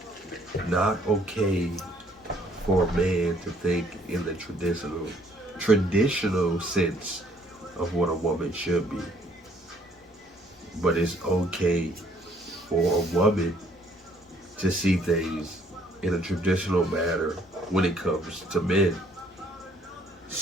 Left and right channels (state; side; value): normal; both; correlation 0.62